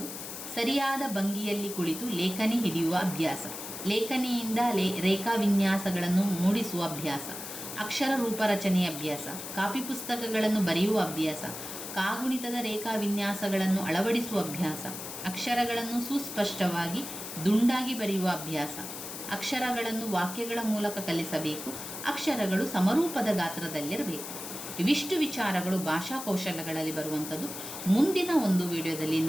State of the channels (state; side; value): noise; left; hiss, 9 dB below the sound